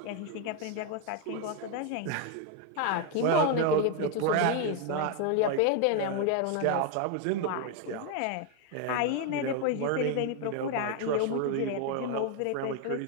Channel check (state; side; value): different; both; correlation 0.01